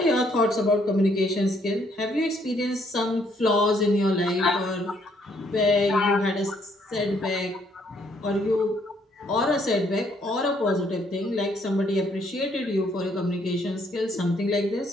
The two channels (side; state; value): both; normal; correlation 0.68